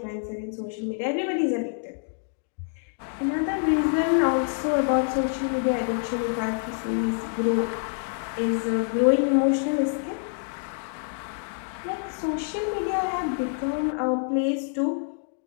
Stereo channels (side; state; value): right; silent; digital silence